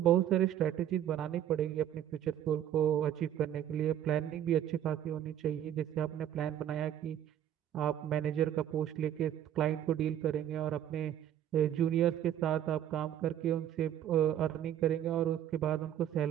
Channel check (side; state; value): left; quieter; 10.7 dB